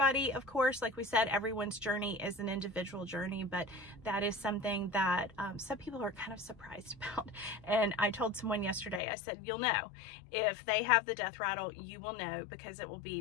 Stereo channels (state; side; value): drops out; right; at 9.0 s